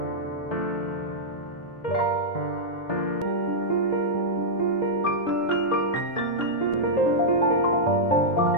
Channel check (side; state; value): right; late; 1.9 ms